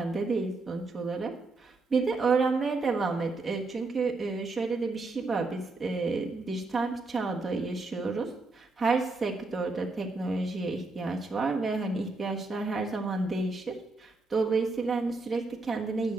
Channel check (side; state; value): left; quieter; 3.5 dB